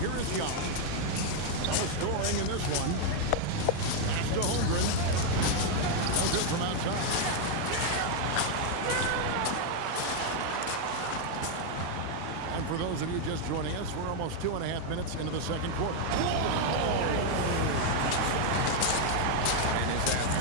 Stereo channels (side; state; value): both; different; correlation 0.00